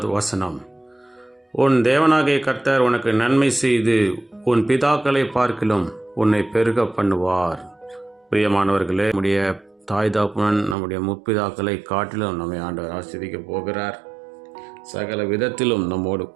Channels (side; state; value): left; drops out; at 10.8 s